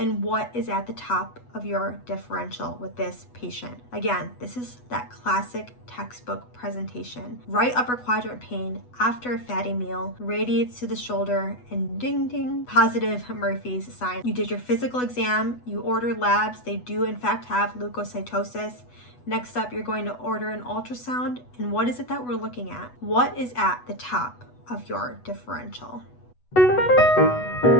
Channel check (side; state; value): right; late; 8.1 ms